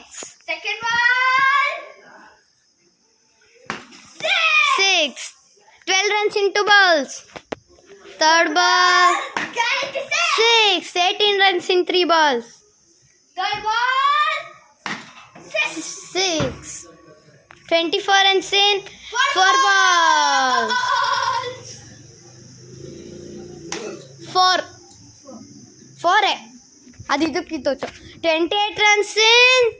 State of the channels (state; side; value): identical; both; correlation 1.00